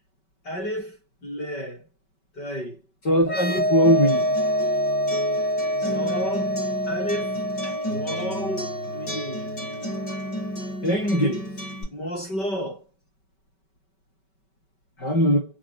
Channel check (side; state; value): right; late; 5.2 ms